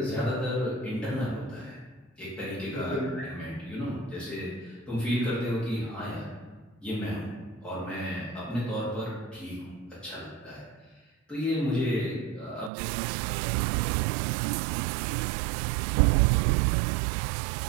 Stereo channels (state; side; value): drops out; left; at 12.7 s